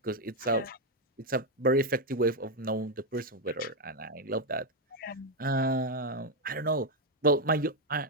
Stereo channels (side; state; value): both; normal; correlation 0.03